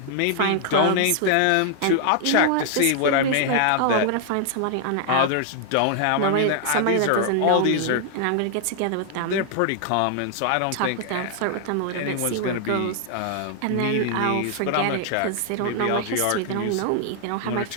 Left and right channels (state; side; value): different; both; correlation 0.00